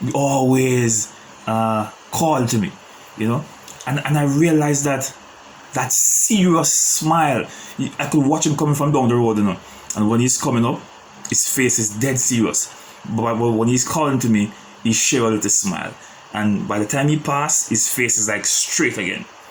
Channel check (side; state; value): both; identical; correlation 1.00